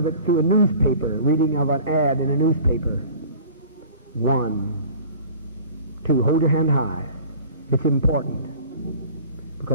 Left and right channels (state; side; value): inverted; both; correlation -0.44